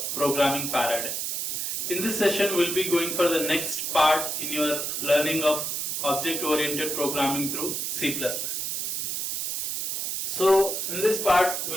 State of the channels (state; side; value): noise; right; hiss, 2 dB below the sound